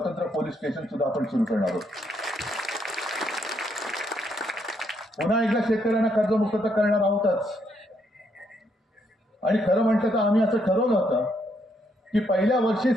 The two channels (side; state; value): both; normal; correlation 0.74